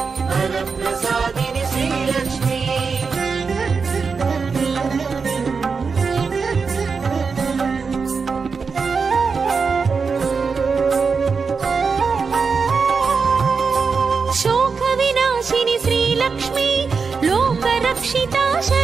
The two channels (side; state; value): left; quieter; 5.1 dB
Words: वरप्रसादिनि श्रीलक्ष्मी शोकविनाशिनि श्रीलक्ष्मी लोकरक्षिता